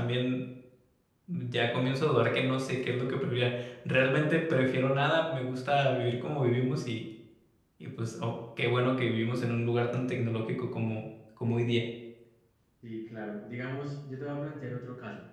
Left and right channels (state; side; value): identical; both; correlation 1.00